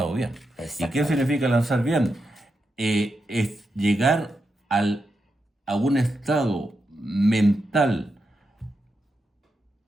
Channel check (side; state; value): both; normal; correlation 0.86